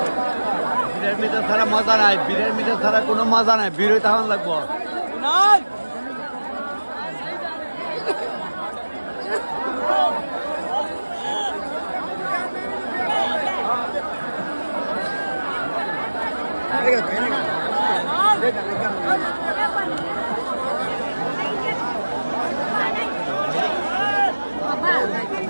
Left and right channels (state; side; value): inverted; both; correlation -1.00